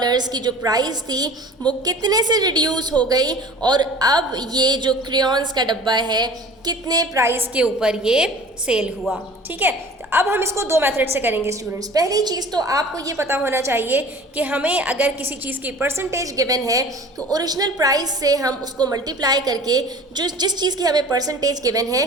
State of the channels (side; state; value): both; normal; correlation 0.43